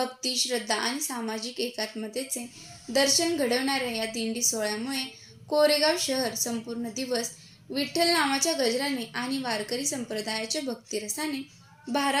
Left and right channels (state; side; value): identical; both; correlation 1.00